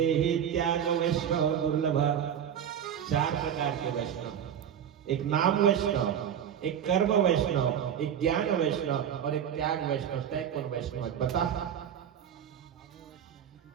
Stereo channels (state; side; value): quieter; left; 9.0 dB